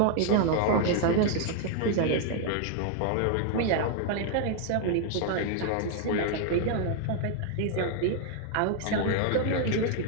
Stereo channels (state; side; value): different; both; correlation 0.00